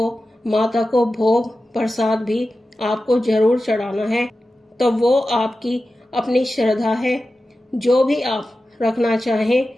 माता को भोग प्रसाद भी आपको जरूर चढ़ाना है। तो वो आपकी अपनी श्रद्धा है, जो भी आप रखना चाहें,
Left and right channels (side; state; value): both; normal; correlation 0.93